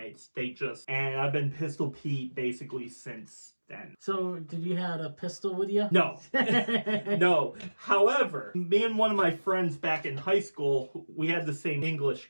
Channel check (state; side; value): inverted; both; correlation -1.00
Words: And I've been Pistol Pete basically since then. So, did you have a pistol with you? No. No. However, me and one of my friends back in high school, we had the same English